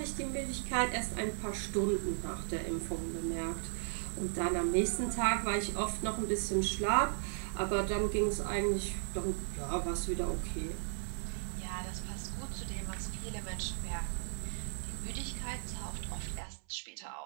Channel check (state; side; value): silent; left; 54 dB below the other